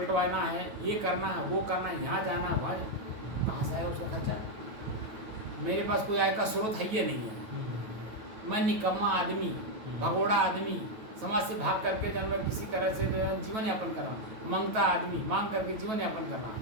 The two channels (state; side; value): late; left; 9.2 ms